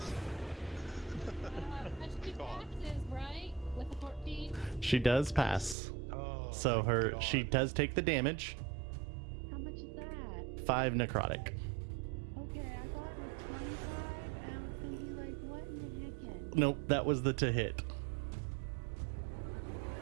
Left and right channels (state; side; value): drops out; left; at 5.8 s